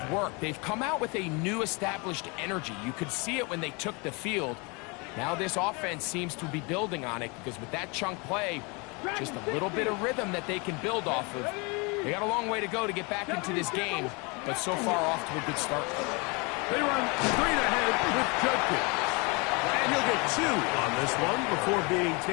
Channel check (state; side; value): quieter; right; 29.7 dB